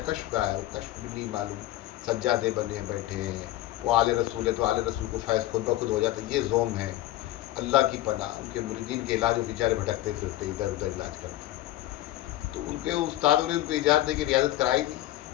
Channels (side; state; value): right; quieter; 15.4 dB